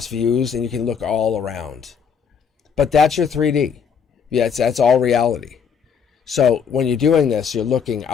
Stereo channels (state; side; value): quieter; right; 6.8 dB